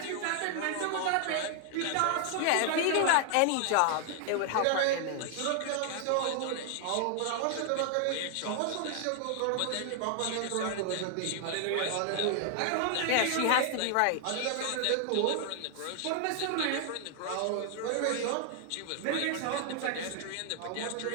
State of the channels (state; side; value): different; both; correlation 0.00